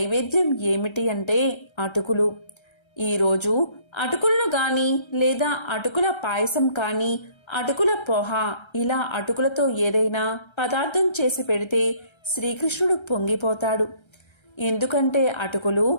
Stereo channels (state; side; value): late; right; 1.3 ms